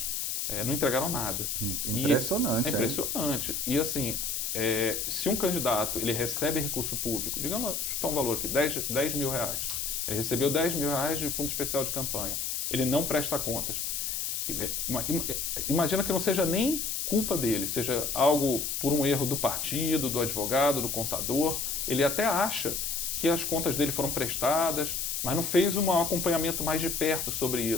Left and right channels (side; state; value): left; noise; hiss, 2 dB below the sound